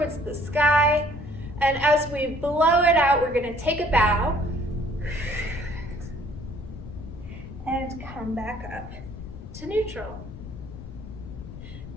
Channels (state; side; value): noise; left; rumble, 13 dB below the sound